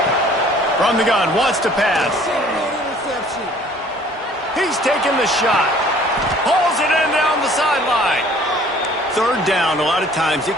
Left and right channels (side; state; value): both; normal; correlation 0.54